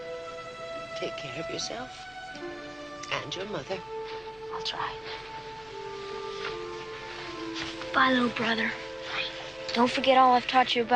Take care of yourself and your mother. I'll try. Bye, little brother. Don't forget all I've taught you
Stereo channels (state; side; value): noise; left; rumble, 29 dB below the sound